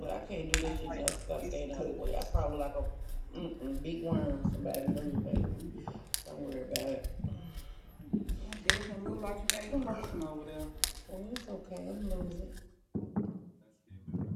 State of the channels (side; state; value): both; identical; correlation 1.00